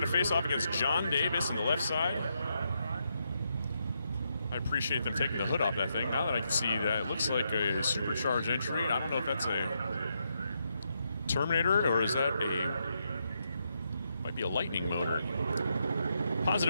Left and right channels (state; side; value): inverted; both; correlation -0.80